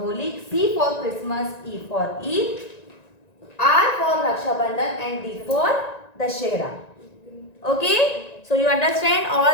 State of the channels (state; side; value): late; right; 1.9 ms